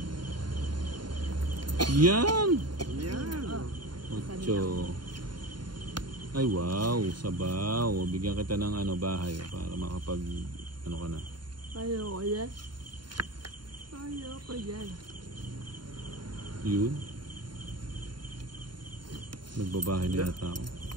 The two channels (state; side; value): late; left; 0.71 ms